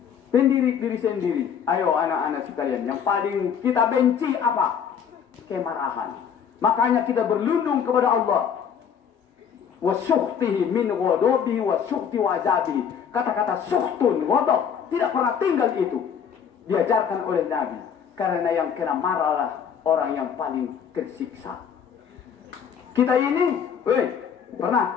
Mendidik diri sendiri. Ayo anak-anak sekalian, yang paling kita benci apa? Kemarahan. Makanya kita berlindung kepada Allah. Wasukhtihi min ghadabihi wasukhti wa azabihi. Kata-kata sukhtun, ghadab tidak pernah tinggal itu. Diajarkan oleh Nabi. Karena yang kena marahlah orang yang paling tersiksa. Kita ini, pernah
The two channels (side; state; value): right; quieter; 7.6 dB